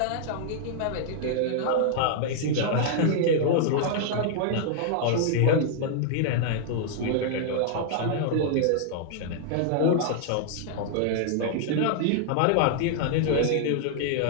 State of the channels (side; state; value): both; different; correlation -0.01